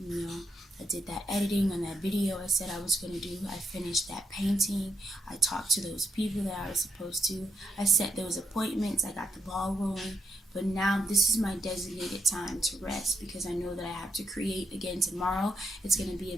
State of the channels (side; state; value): both; normal; correlation 0.81